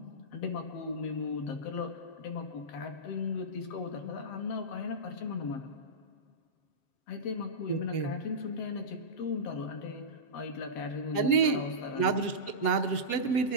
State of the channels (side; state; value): right; late; 7.6 ms